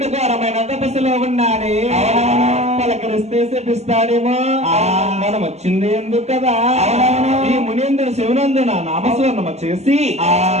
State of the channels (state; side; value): late; left; 0.32 ms